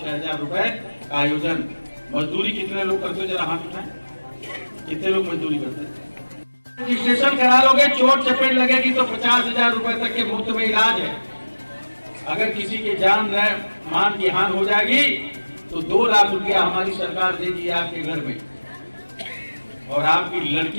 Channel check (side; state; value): both; inverted; correlation -1.00